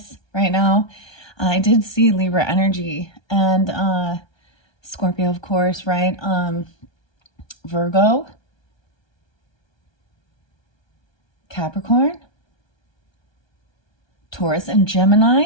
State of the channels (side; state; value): right; late; 1.3 ms